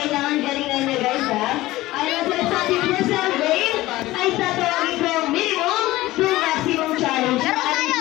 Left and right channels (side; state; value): right; quieter; 17.6 dB